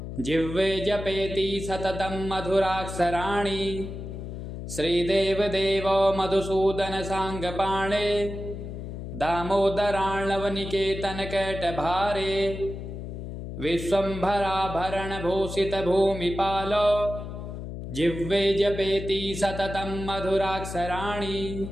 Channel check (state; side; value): noise; left; hum, 8 dB below the sound